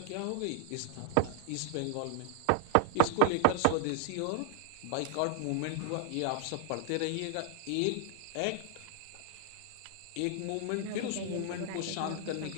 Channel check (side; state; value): both; different; correlation 0.00